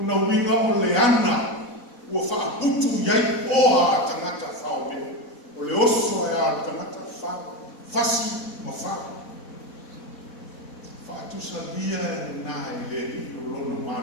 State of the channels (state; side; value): late; right; 4.1 ms